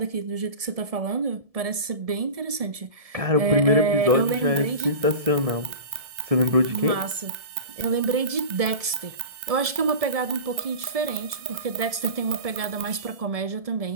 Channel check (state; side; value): late; left; 1.7 ms